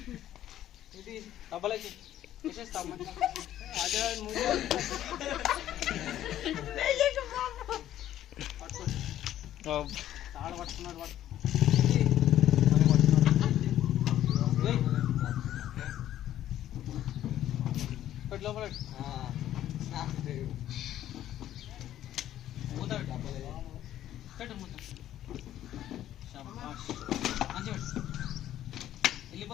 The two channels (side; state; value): right; quieter; 12.3 dB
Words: ఇది డబ్బలకి వేసేస్తాం. అదే తాడు పట్టుకున్నాడు వాడు. లోపల మూత పెట్టు, మూత మంచిగా పెట్టు,